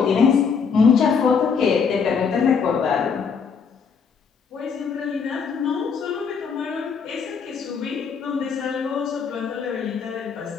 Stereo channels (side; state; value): right; quieter; 6.0 dB